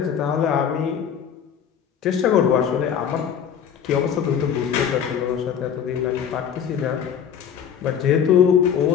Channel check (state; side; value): quieter; right; 8.2 dB